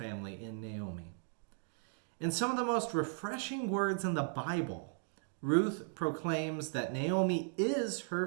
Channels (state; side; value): silent; left; 53 dB below the other